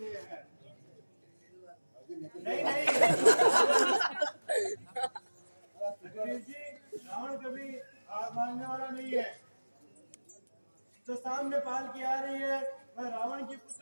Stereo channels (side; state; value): both; inverted; correlation -1.00